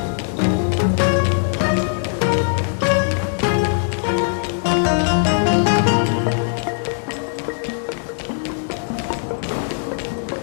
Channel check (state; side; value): silent; right; digital silence